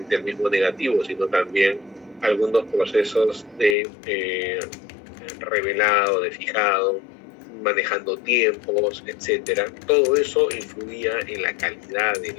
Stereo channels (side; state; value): right; drops out; at 3.8 s